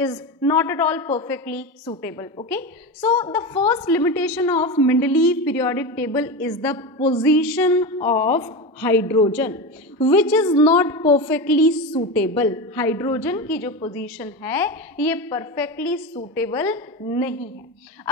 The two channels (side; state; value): both; normal; correlation 0.21